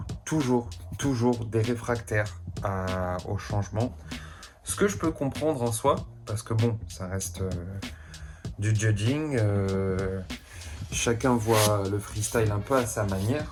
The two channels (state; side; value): identical; both; correlation 1.00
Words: des réfractaires au changement. Ce que je peux comprendre en soi, parce que bon, ça reste du judging. Chacun voit le freestyle un peu à sa